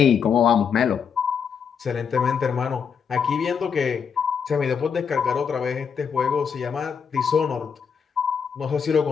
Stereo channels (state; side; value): quieter; right; 6.8 dB